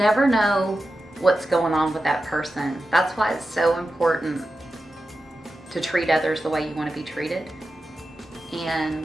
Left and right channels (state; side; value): normal; both; correlation 0.92